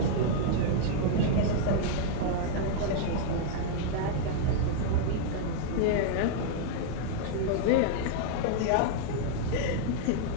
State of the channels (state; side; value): different; both; correlation -0.01